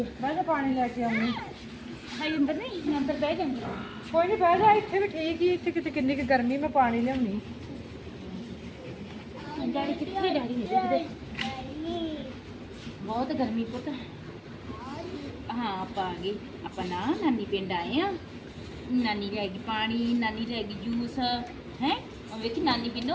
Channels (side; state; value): both; identical; correlation 1.00